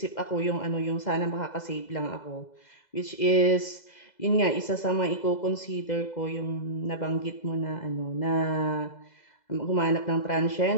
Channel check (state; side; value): late; right; 2.0 ms